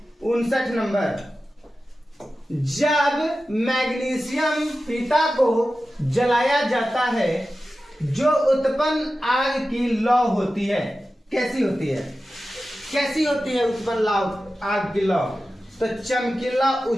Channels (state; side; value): normal; both; correlation 0.94